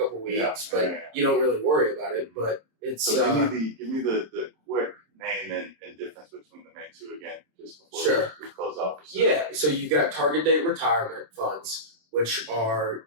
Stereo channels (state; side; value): late; left; 27 ms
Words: of weeks, but you don't really worry about it. But it's so give me the quick name and difference between the main two again, just before we close off. Yeah. So you've got target date retirement funds, which are